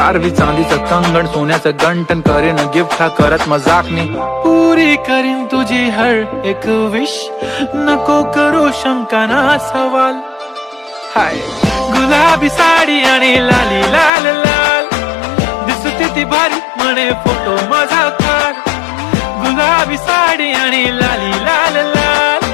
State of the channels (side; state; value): right; drops out; at 14.1 s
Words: चांदीचं कंगण सोन्याचं गंटन. करीन गिफ्ट हा करत मजाकनी, पुरी करीन तुझी हर एक विश. नको करू शंका ना सवाल. हाय गुलाबी साडी आणि लाली लाल लाल, दिसते ती भारी म्हणे फोटो माझा काढ. गुलाबी साडी आणि लाली लाल लाल,